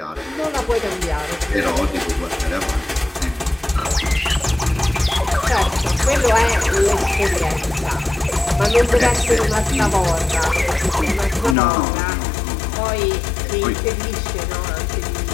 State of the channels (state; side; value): drops out; right; at 11.6 s